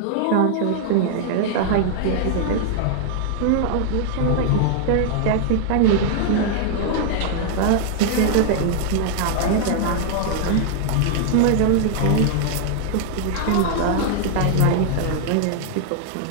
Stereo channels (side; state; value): both; different; correlation 0.00